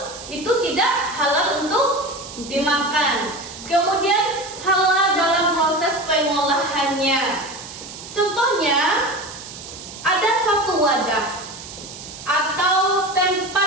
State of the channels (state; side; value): noise; right; hiss, 13 dB below the sound